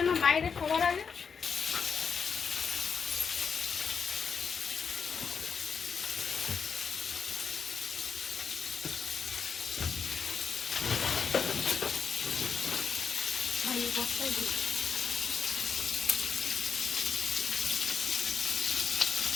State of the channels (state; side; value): quieter; right; 6.1 dB